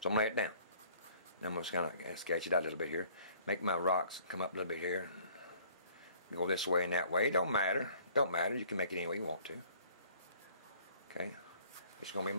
So I'm going to lay it down. Then I'm just kind of sketch it out a little bit here. Make my rocks come up a little bit here. Go this way and that way. It don't matter. Don't matter. You can make it any way you want to. Okay. It's going to be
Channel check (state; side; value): inverted; both; correlation -0.56